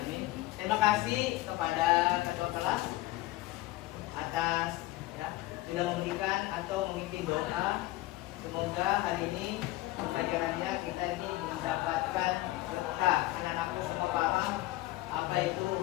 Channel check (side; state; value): right; quieter; 18.1 dB